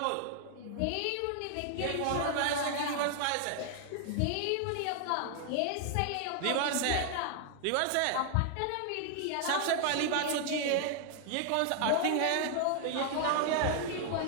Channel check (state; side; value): different; both; correlation 0.00